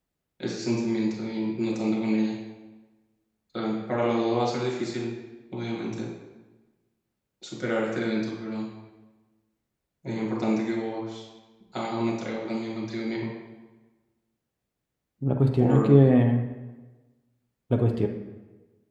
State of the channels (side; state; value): both; identical; correlation 1.00